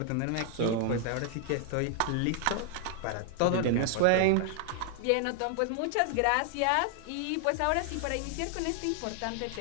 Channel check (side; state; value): both; different; correlation 0.00